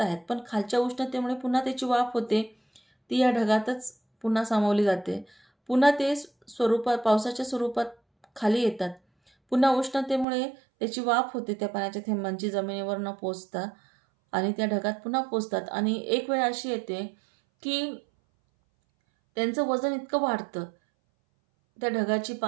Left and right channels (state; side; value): drops out; left; at 10.2 s